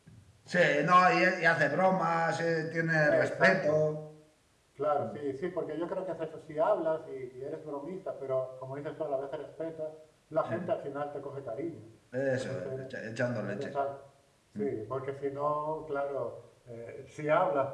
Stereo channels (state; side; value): identical; both; correlation 1.00